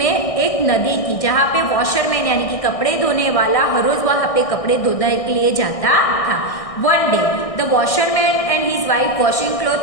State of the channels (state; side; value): late; right; 1.6 ms